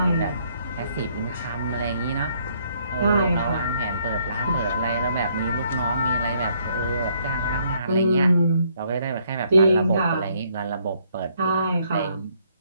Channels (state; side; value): inverted; both; correlation -0.69